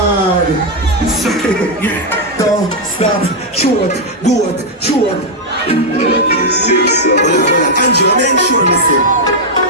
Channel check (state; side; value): normal; both; correlation -0.01